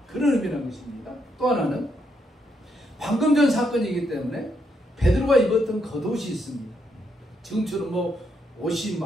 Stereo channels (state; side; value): normal; both; correlation 0.77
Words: 그런 의미라는 것입니다. 또 하나는 방금 전 사건이기 때문에 베드로가 입었던 겉옷이 있습니다. 지금처럼 뭐 옷이